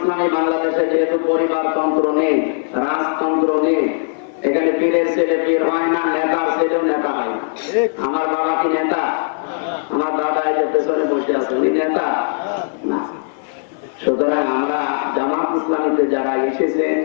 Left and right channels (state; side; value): silent; right; digital silence